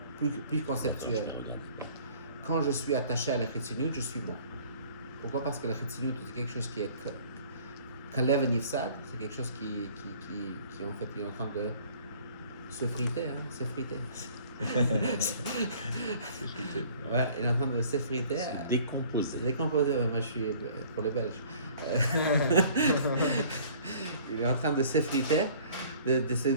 plus conceptuel. Quand je suis attaché à la Chitsoniut, je suis mort. Pourquoi? Parce que la Chitsoniut, c'est quelque chose qui est Kalev Nifsad, c'est quelque chose qui en fait est en train de se friter, s'effriter. Ouais, il est en train de s'effriter. Décomposé. Se décomposer, ouais, moi je suis pour les Belges. Il est en train de s'effriter, de se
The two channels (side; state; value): both; inverted; correlation -0.53